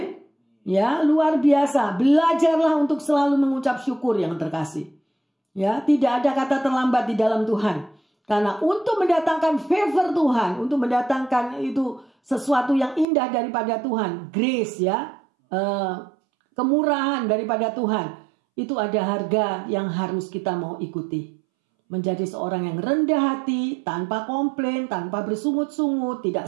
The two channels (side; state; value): left; drops out; at 13.1 s